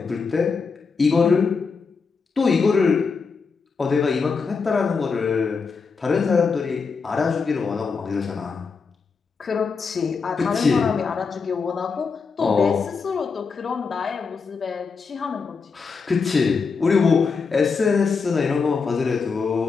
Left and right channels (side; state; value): right; quieter; 5.0 dB